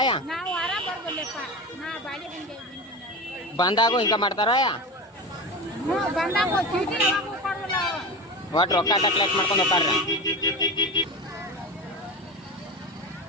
ಬಂದಾಗೂ ಹಿಂಗ ಮಾಡ್ತಾರ? ಒಟ್ಟು ರೊಕ್ಕ ಅಟ್ಟ ಕಲೆಕ್ಟ್ ಮಾಡ್ಕೊಂಡು ಹೋಗ್ತಾರ.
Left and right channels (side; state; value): both; normal; correlation 0.25